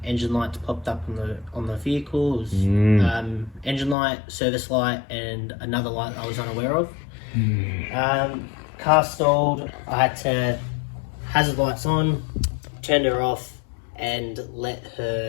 engine lights popped up on the vehicle. It was, engine light, service light, and another light I was unaware of. Car stalled. I had to hazard lights on, turned her off, and let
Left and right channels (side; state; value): right; drops out; at 4.0 s